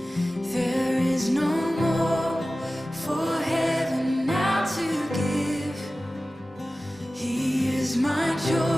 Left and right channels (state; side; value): normal; both; correlation 0.96